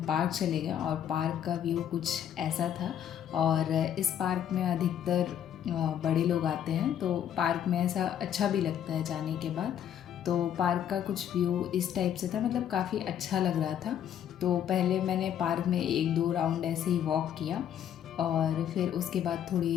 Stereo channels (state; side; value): quieter; right; 9.8 dB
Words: पार्क चले गए और पार्क का व्यू कुछ ऐसा था। और इस पार्क में अधिकतर बड़े लोग आते हैं, तो पार्क में ऐसा अच्छा भी लगता है जाने के बाद। तो पार्क का कुछ व्यू इस टाइप से था, मतलब काफ़ी अच्छा लग रहा था। तो पहले मैंने पार्क में 1-2 राउंड ऐसे ही वॉक किया और फिर उसके बाद